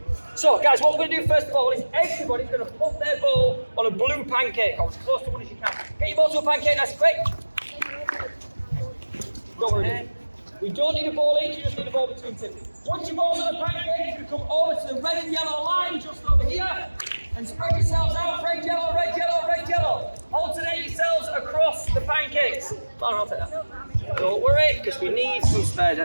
So guys, what we're going to do first of all is everybody's going to put their ball on a blue pancake, or as close to one as you can. Get your ball to a pancake, nice and quick. Don't worry. We don't need a ball each, you just need a ball between two. Once your ball's on a pancake, you're going to come over to the red and yellow line just over here. And spread yourselves out, red, yellow, red, yellow, red, yellow. Alternate yourselves across the pancakes. I'll take that. Don't worry, because we need some spares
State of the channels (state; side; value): inverted; both; correlation -1.00